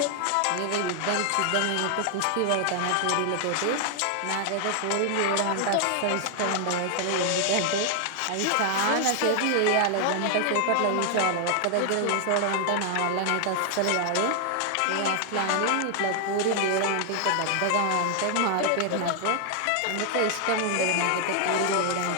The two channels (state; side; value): different; both; correlation 0.00